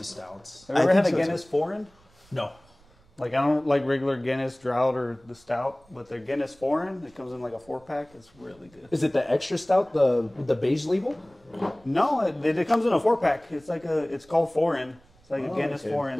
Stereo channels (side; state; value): right; noise; rumble, 30 dB below the sound